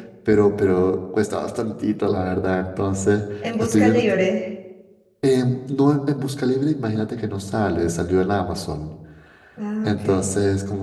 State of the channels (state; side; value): identical; both; correlation 1.00